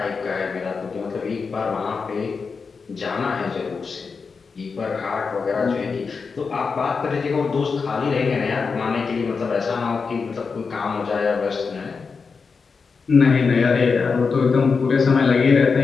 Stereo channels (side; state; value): right; quieter; 5.1 dB